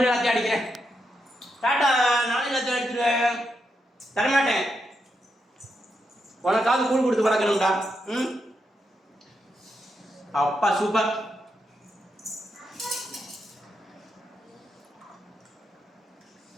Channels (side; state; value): both; normal; correlation 0.83